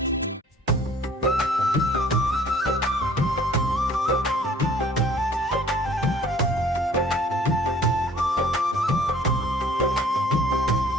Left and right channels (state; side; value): normal; both; correlation 0.53